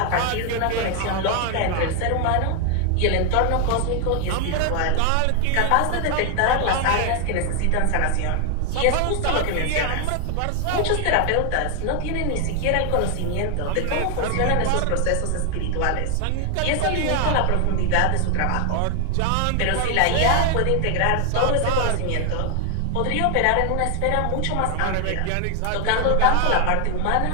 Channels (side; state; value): both; different; correlation 0.00